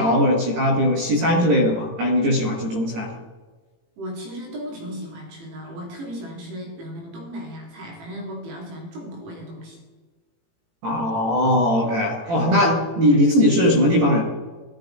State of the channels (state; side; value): late; left; 18 ms